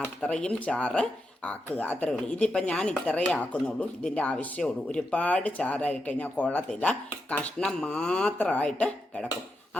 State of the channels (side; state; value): both; normal; correlation 0.86